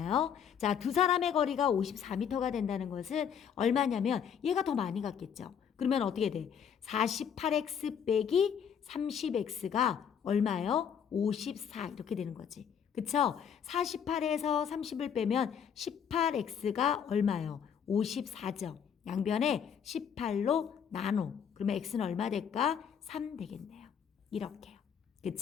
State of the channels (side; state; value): right; quieter; 7.8 dB